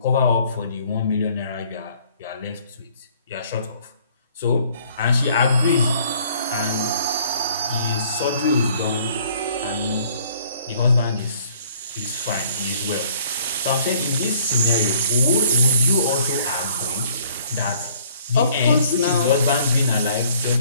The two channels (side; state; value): both; inverted; correlation -0.58